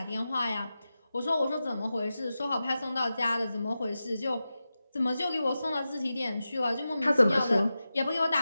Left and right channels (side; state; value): both; inverted; correlation -0.93